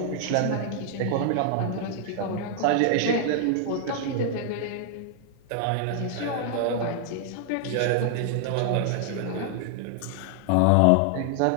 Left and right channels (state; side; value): different; both; correlation 0.00